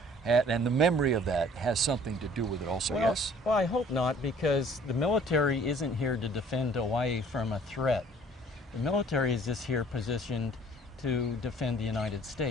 and the memory of that has something to do with it also, yes? Well, I hope not, because the military isn't here to defend Hawaii from a threat. The military is just here positioned to defend the United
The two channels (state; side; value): normal; both; correlation 0.54